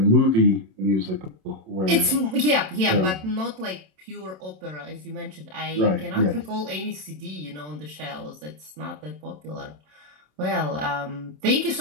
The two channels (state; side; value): late; left; 27 ms